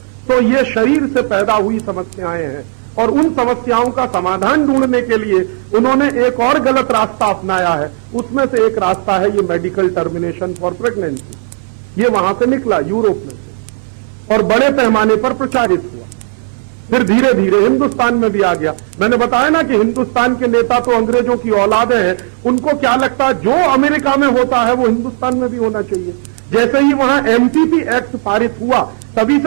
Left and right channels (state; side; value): silent; left; digital silence